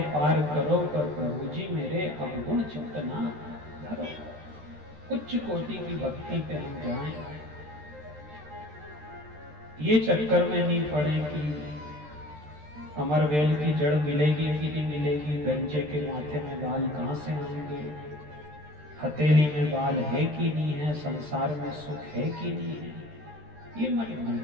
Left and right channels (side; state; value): left; late; 13 ms